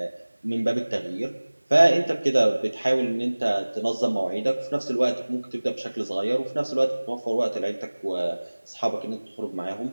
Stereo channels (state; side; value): inverted; both; correlation -1.00